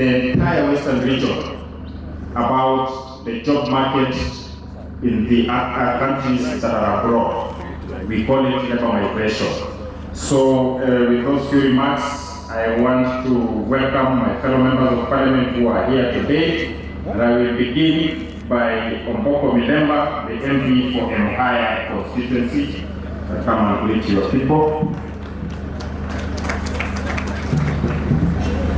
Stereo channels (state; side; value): identical; both; correlation 1.00